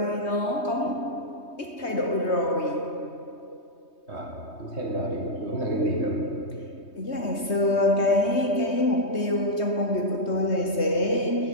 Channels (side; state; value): right; late; 3.2 ms